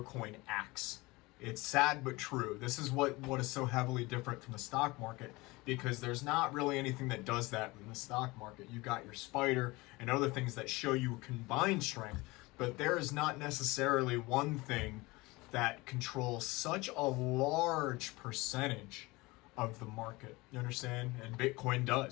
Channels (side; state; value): right; quieter; 22.6 dB